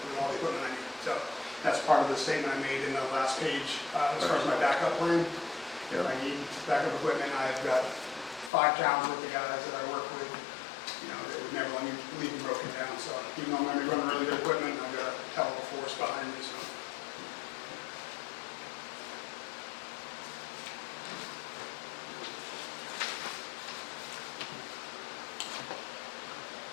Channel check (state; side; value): drops out; right; at 8.5 s